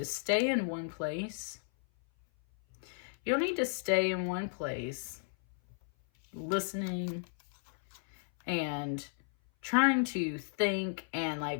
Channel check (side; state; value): right; silent; 55 dB below the other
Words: stay in one place. You don't need to stay in one place listening and trying to think and like